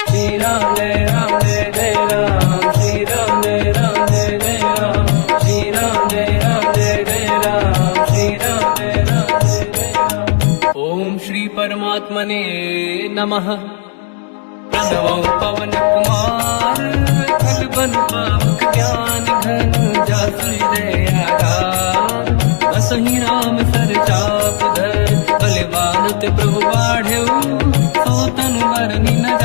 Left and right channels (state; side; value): silent; right; 58 dB below the other